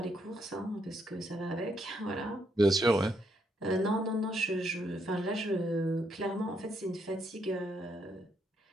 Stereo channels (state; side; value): normal; both; correlation 0.75